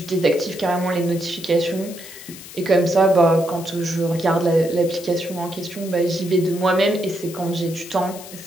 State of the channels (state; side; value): noise; left; hiss, 15 dB below the sound